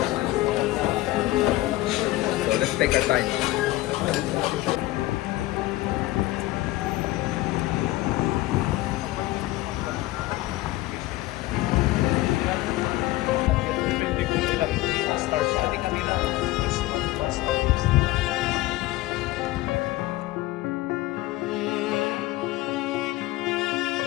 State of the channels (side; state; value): right; quieter; 17.6 dB